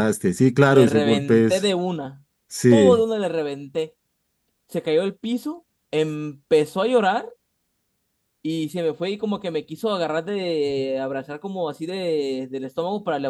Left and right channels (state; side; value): identical; both; correlation 1.00